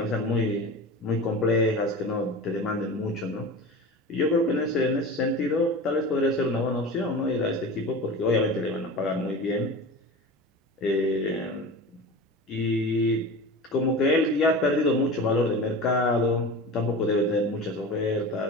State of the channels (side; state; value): both; normal; correlation 0.32